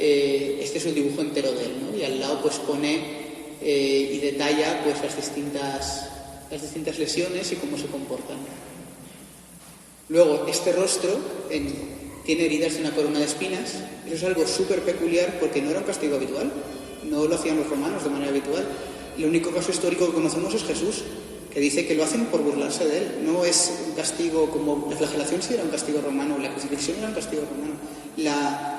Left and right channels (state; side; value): identical; both; correlation 1.00